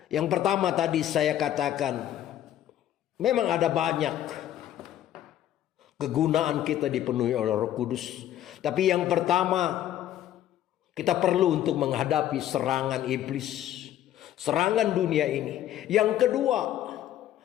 yang pertama tadi saya katakan, memang ada banyak kegunaan kita dipenuhi oleh Roh Kudus. Tapi yang pertama, kita perlu untuk menghadapi serangan iblis, serangan dunia ini. Yang kedua,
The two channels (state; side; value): quieter; right; 11.9 dB